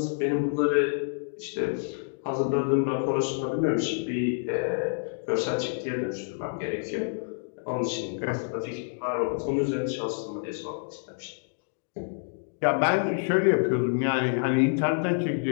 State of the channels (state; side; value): silent; right; digital silence